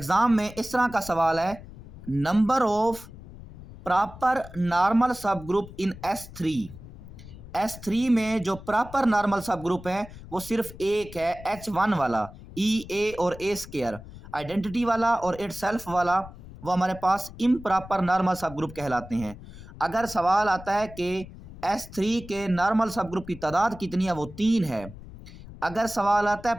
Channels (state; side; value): noise; left; rumble, 16 dB below the sound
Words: में इस तरह का सवाल है, number of proper normal sub group in S3 में जो प्रॉपर नॉर्मल सब ग्रुप है वो सिर्फ एक है, H1 वाला, E, A और A स्क्वायर। आइडेंटिटी वाला और इट सेल्फ वाला वो हमारे पास इम्प्रॉपर नॉर्मल सब ग्रुप कहलाते हैं। अगर सवाल आता है कि S3 के नॉर्मल सब ग्रुप की तादाद कितनी है, वो 3 है। अगर सवाल आता है